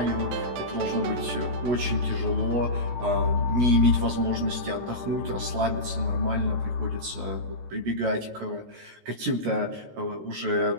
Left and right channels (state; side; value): late; left; 16 ms